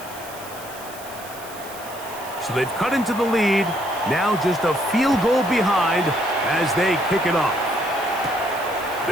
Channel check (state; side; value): noise; right; hiss, 16 dB below the sound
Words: So they've cut into the lead. Now just a field goal behind as they kick it off.